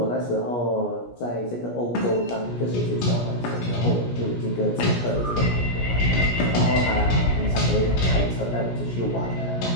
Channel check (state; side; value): late; right; 17 ms